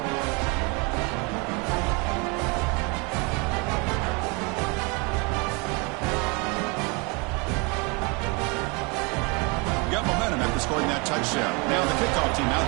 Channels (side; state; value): left; quieter; 30.2 dB